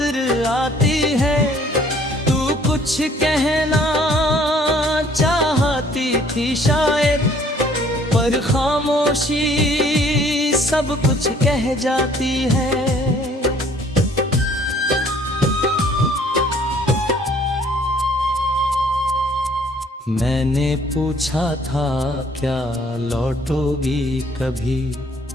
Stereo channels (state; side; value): normal; both; correlation 0.59